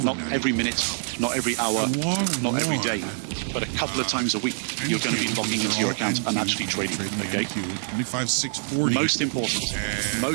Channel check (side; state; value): left; silent; digital silence